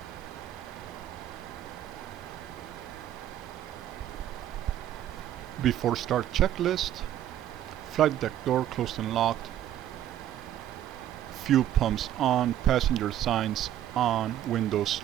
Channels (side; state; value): left; quieter; 11.7 dB